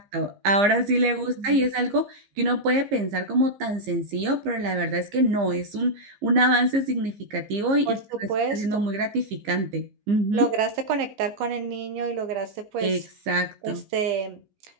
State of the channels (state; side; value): late; left; 15 ms